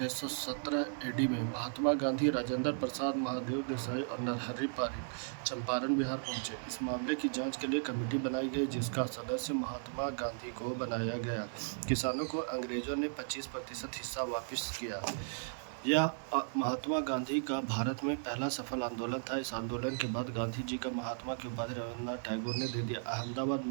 एडी में महात्मा गांधी, राजेंद्र प्रसाद, महादेव देसाई और नरहरि पारिक चंपारण बिहार पहुंचे। इस मामले की जांच के लिए कमेटी बनाई गई जिसका सदस्य महात्मा गांधी को बनाया गया। किसानों को अंग्रेजों ने 25% हिस्सा वापस किया। यह महात्मा गांधी का भारत में पहला सफल आंदोलन था। इस आंदोलन के बाद गांधी जी का महात्मा की उपाधि रविंद्रनाथ टैगोर ने दे दिया। अहमदाबाद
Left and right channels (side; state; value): left; silent; 54 dB below the other